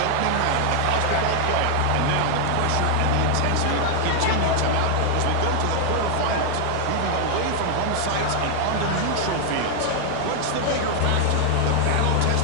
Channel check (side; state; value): both; different; correlation 0.00